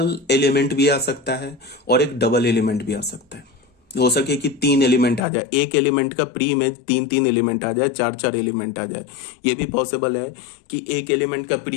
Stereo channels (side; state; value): right; drops out; at 5.2 s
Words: एलिमेंट भी आ सकता है और एक डबल एलिमेंट भी आ सकता है। हो सके कि 3 एलिमेंट आ जाए, एक एलिमेंट का प्री इमेज 3 एलिमेंट आ जाए, 4 एलिमेंट आ जाए। ये भी पॉसिबल है कि एक एलिमेंट का प्री